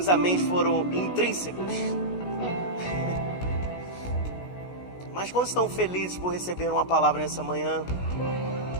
améns foram intrínsecos. Mas quando estão felizes por receber uma palavra nessa manhã?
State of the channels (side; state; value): right; late; 16 ms